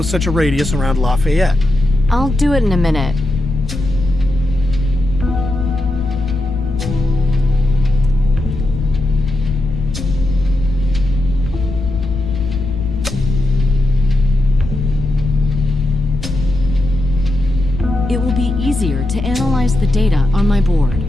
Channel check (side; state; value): left; noise; rumble, 8 dB below the sound